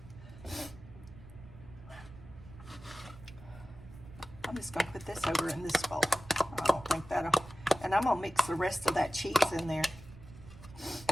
I'm just going to put this over in this bowl. I don't think that'll. And I'm going to mix the rest of that cheese in there.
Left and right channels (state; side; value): noise; right; rumble, 17 dB below the sound